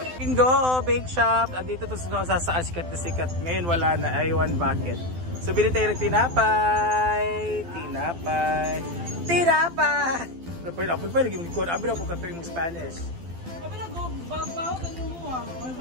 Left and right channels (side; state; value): left; late; 12 ms